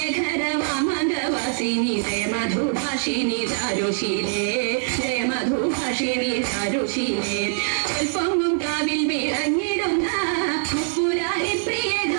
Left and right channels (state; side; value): silent; left; 63 dB below the other